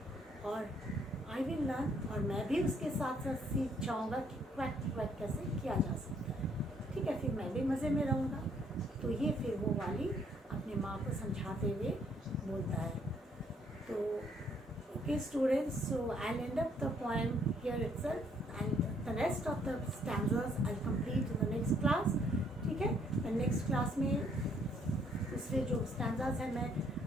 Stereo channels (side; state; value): both; normal; correlation 0.67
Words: और आई विल लर्न, और मैं भी उसके साथ साथ सीख जाऊँगा कि क्वैक क्वैक कैसे किया जा सकता है। ठीक है, फिर मैं भी मज़े में रहूँगा। तो ये फिर वो वाली अपने माँ को समझाते हुए बोलता है। तो okay students, so I will and up the poem here itself, and the rest of the stanzas I'll complete in the next class. And next class में दूसरे जो स्टैंजास हैं मैं